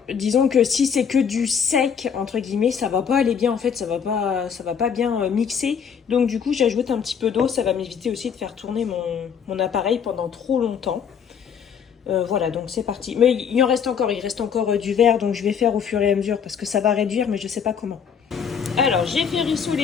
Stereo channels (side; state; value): right; quieter; 7.3 dB